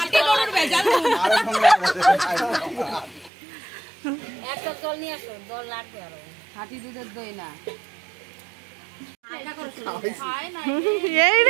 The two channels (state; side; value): drops out; left; at 3.3 s